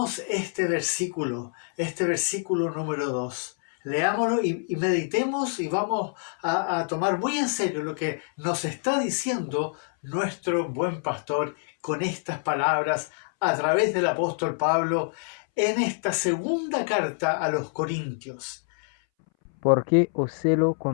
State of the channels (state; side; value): silent; right; 61 dB below the other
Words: este versículo número 2. Leámoslo y meditemos y vamos a tomar muy en serio lo que nos está diciendo nuestro buen pastor con estas palabras a través del apóstol Pablo en esta segunda carta a los Corintios. Porque os celo